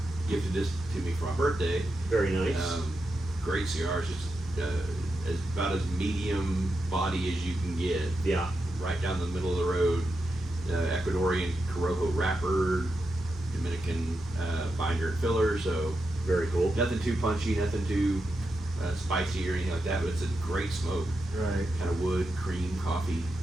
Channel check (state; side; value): normal; both; correlation 0.87